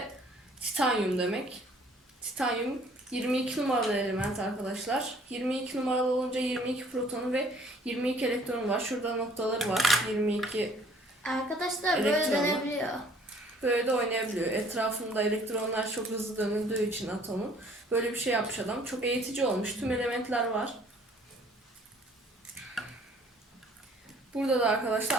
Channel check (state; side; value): normal; both; correlation 0.57